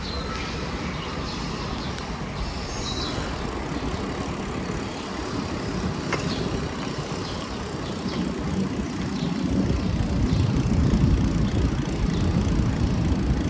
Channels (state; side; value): identical; both; correlation 1.00